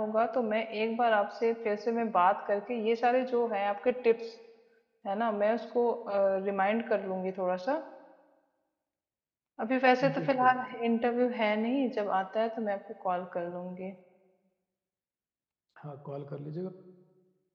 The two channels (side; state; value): both; identical; correlation 1.00